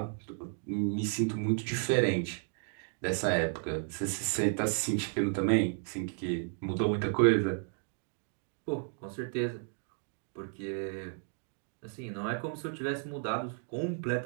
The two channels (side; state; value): left; silent; 56 dB below the other